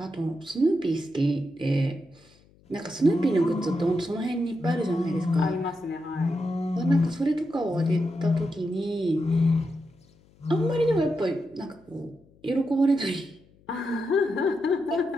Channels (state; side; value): noise; left; hum, 30 dB below the sound